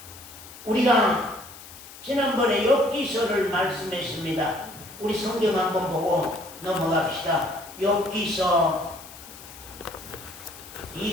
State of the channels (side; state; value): left; noise; hiss, 17 dB below the sound